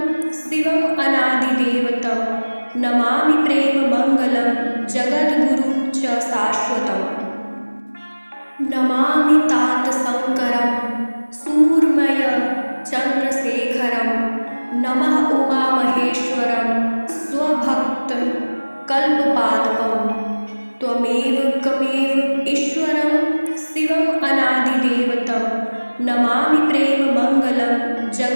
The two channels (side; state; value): both; inverted; correlation -1.00